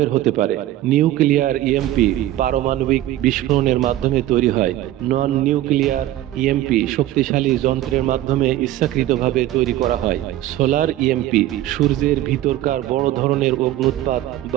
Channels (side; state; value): left; quieter; 14.3 dB